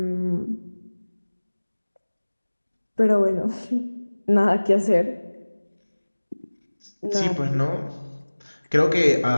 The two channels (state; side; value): inverted; both; correlation -1.00